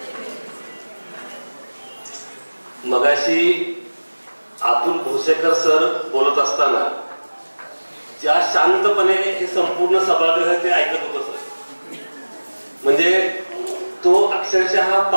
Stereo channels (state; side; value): inverted; both; correlation -1.00